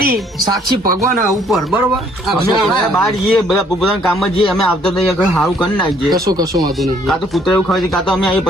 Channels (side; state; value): both; normal; correlation 0.63